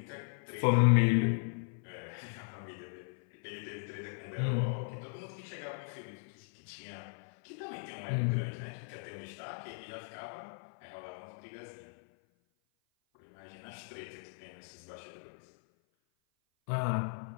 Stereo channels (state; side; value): silent; right; 53 dB below the other